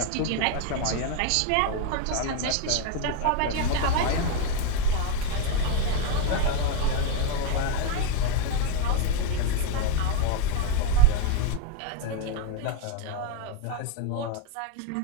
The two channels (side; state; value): both; different; correlation 0.01